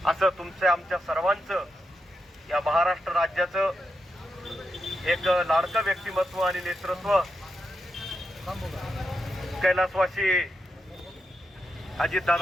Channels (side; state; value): both; normal; correlation 0.85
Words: असं तुमच्या आमच्या सर्वांचं या महाराष्ट्र राज्याचं एक लाडकं व्यक्तिमत्व आणि नेतृत्व कैलासवासी